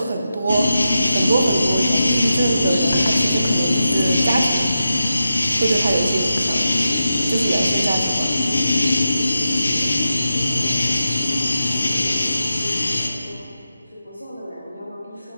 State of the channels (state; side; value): inverted; both; correlation -0.89